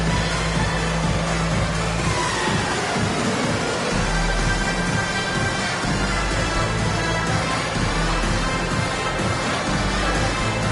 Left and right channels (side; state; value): both; identical; correlation 1.00